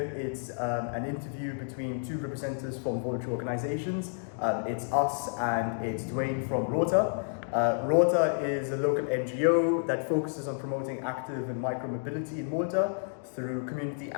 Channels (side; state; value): right; silent; digital silence